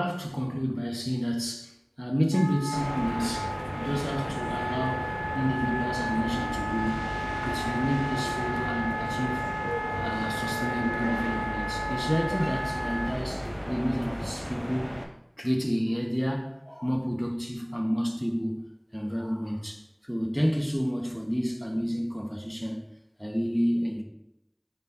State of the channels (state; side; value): identical; both; correlation 1.00